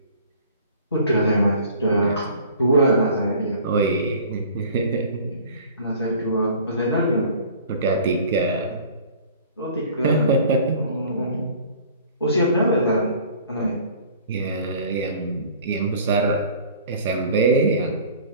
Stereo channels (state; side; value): inverted; both; correlation -0.48